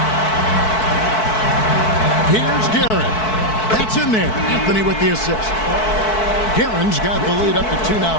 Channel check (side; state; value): right; late; 4.6 ms